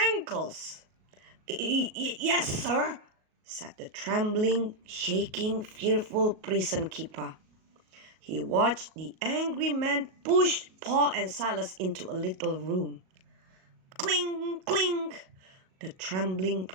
"Yes, sir," said the trembling, shaking, fearful prison keeper. He watched the angry man push Paul and Silas into a little room. Cling, cling! The trembling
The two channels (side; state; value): left; late; 38 ms